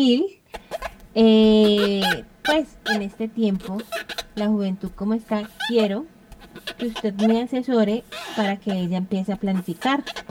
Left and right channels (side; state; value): both; identical; correlation 1.00